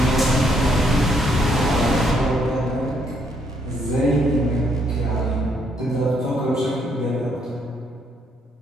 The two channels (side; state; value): both; normal; correlation 0.71